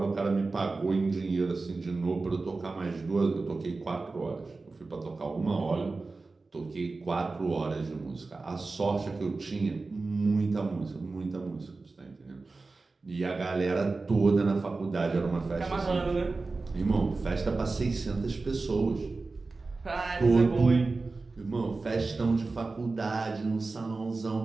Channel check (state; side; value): quieter; left; 3.7 dB